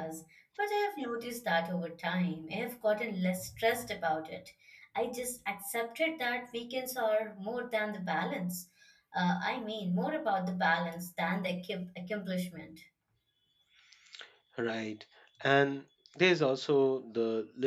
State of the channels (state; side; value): identical; both; correlation 1.00